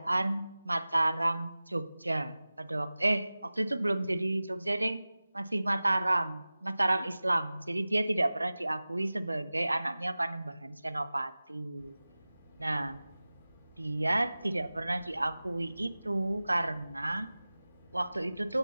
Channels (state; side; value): inverted; both; correlation -0.97